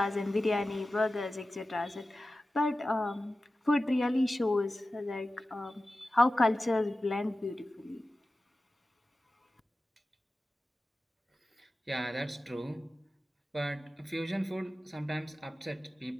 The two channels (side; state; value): both; normal; correlation 0.95